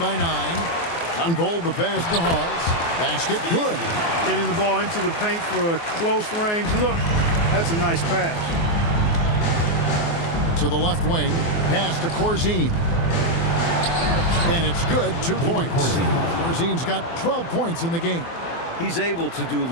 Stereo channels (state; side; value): late; right; 24 ms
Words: 9. Unfold the pass to Hawes. Basket good. Getting the ball into the paint for a close range look. That's a nice pass. To the left wing. Pass to Corzine. And it's good. 2 points. Corzine's got 12 points in the game. He's able to do